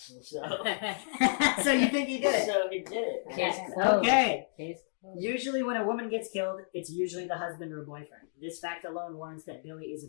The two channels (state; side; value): silent; right; digital silence